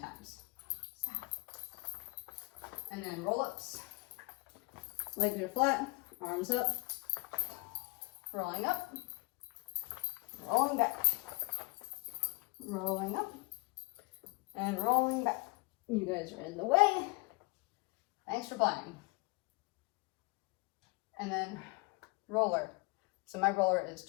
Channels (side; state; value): right; quieter; 26.4 dB